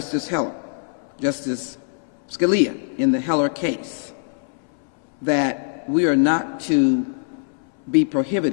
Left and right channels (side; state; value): right; silent; 64 dB below the other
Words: Scalia in the Heller case, that we are not to be